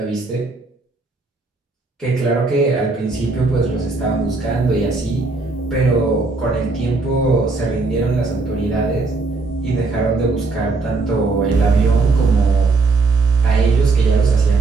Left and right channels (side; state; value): left; quieter; 3.7 dB